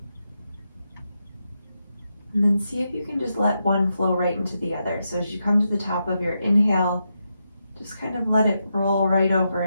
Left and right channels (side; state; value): both; inverted; correlation -0.85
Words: And then see if you can just let one flow right into the other. So as you come to the top of your inhale, just kind of let it roll right over